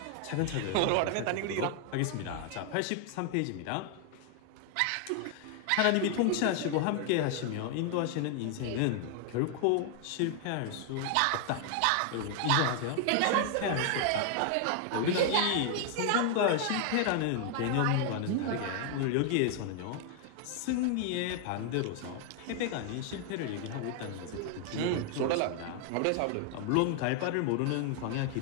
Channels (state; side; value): different; both; correlation 0.00